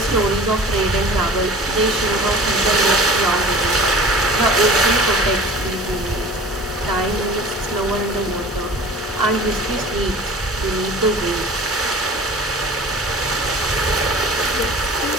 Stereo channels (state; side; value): normal; both; correlation 0.41